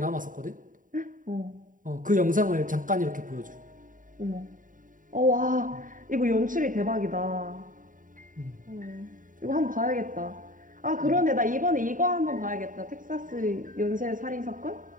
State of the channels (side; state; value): left; late; 0.39 ms